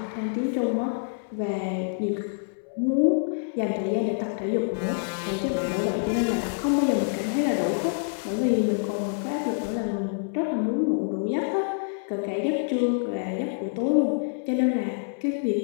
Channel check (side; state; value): right; silent; 60 dB below the other